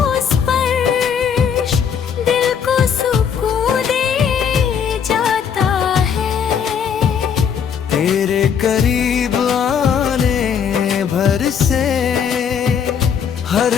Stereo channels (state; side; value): quieter; right; 7.5 dB